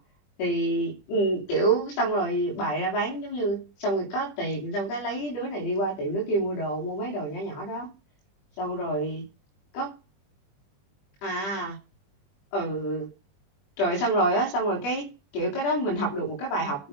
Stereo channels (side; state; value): right; late; 21 ms